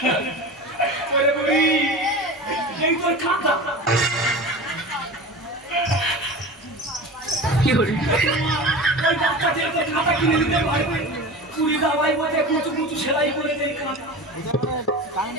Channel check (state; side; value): normal; both; correlation 0.31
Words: এই তোর খাতা ওই বাচ্চাদের তো খাতা কিনে দিতে পারবে কুড়ি দাবাই বসে কুচু কুচু সেলাই করে দেয় খাতা